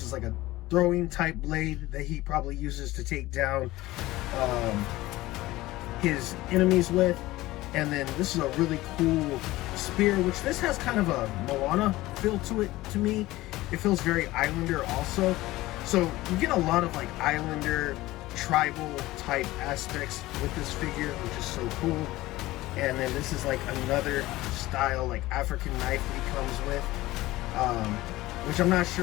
is like a throwing type blade that he probably uses to take down his enemies with. And then this is a really cool spear, which this has kind of a Moana feel to it to me. It feels very islander also. So you get a lot of like islander tribal type aspects with this figure, which is so cool. And then this is like another style like African knife that he comes with, which I'm not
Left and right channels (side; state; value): right; quieter; 18.0 dB